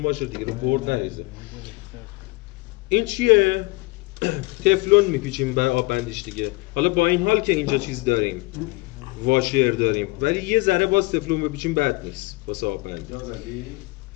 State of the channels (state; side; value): quieter; right; 23.9 dB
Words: باشه دیگه رو برد نریزه. این چیه؟ تفلون میپیچیم برای آب بندیش دیگه. حالا با این حال که اینجا چیز داریم واشر داریم ولی یه ذره باز تفلون بپیچیم بد نیست واسه آب بندی.